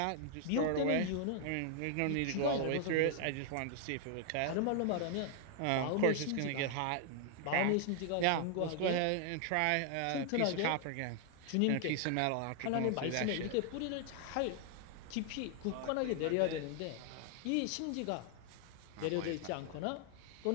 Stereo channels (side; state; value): both; different; correlation 0.00